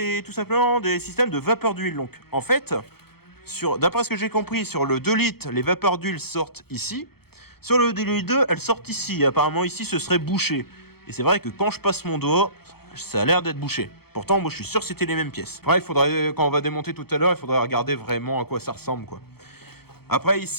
tout simplement des systèmes de vapeur d'huile. Donc en fait, d'après ce que j'ai compris, sur le 2 litres, les vapeurs d'huile sortent ici. Sur le DLI2, elles sortent ici. Apparemment, ici, ce serait bouché. Et c'est vrai que quand je passe mon doigt, ça a l'air d'être bouché. Pourtant, moi, je suis sûr que c'était les mêmes pièces. Après, il faudrait, quand on va démonter tout à l'heure, il faudrait regarder vraiment à quoi ça ressemble, quoi. Après,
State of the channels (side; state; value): right; late; 0.96 ms